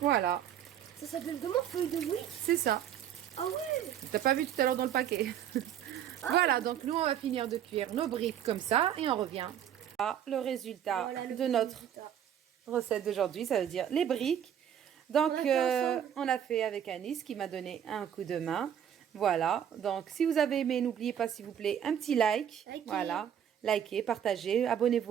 Voilà. Ça s'appelle comment, feuilles de briques? C'est ça. Ah ouais. T'as pas vu tout à l'heure dans le paquet. Voilà, donc nous on va finir de cuire nos briques comme ça et on revient. Ah, le résultat de notre recette d'aujourd'hui, ça veut dire les briques. Donc on a fait avec Anis qui m'a donné un coup de main. Voilà, donc si vous avez aimé, n'oubliez pas s'il vous plaît un petit like. Voilà, likez, partagez,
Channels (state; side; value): quieter; left; 9.7 dB